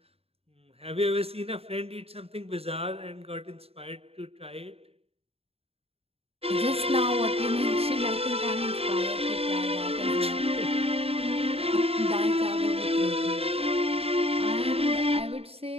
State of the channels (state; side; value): late; left; 0.29 ms